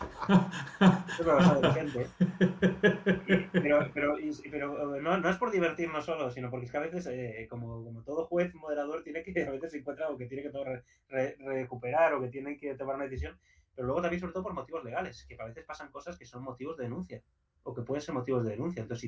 me lo sabe la gente. Pero no es por divertirnos solo, sino porque es que a veces, como todo juez moderador, tiene que a veces se encuentra algo que tiene que recuperar o que tiene que tomar una decisión, pero luego también sobre todo por motivos legales, que a veces pasan cosas que son motivos de denuncia o que pueden ser motivos de denuncia. Entonces,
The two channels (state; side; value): identical; both; correlation 1.00